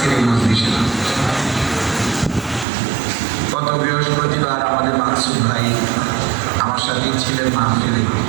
এই মজলিসে। গত বৃহস্পতিবার আমাদের মাকসুদ ভাই আমার সাথেই ছিলেন মাহফিলে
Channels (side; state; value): left; drops out; at 2.7 s